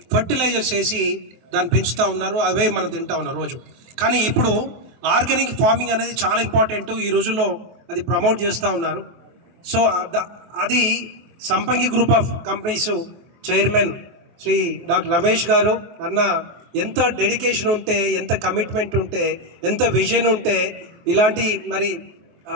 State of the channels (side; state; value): left; late; 24 ms